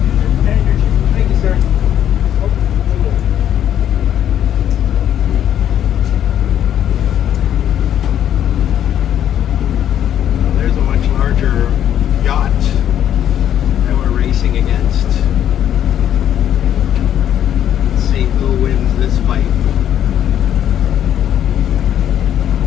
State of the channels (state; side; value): quieter; right; 10.4 dB